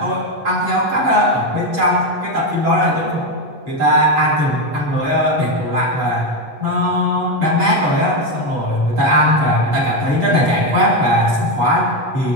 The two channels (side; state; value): left; late; 8.2 ms